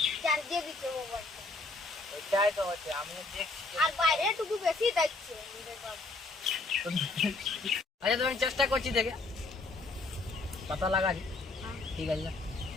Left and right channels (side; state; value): right; quieter; 3.3 dB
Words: চার্জে দিচ্ছে মোবাইলটা ওইটাই তো হচ্ছে আমিও দেখছি আর বাইরে টুকু বেশি দেখছে আমাদের বাবু। আচ্ছা তুমি চেষ্টা করছি দেখে পাতা লাগালি ঠিক আছে যা।